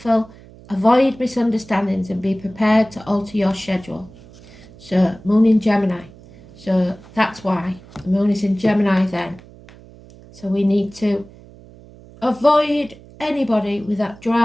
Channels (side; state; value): right; noise; hum, 22 dB below the sound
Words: avoid misunderstandings and be prepared to alter your schedule. So moon in Gemini. So that's why the moon is in Gemini then. So we need to avoid anybody with that